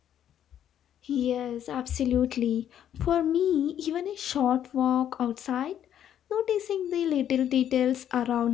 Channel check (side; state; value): right; quieter; 10.2 dB